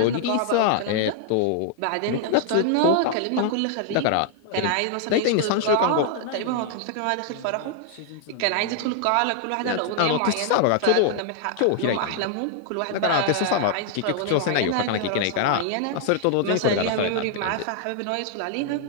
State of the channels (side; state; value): both; different; correlation 0.00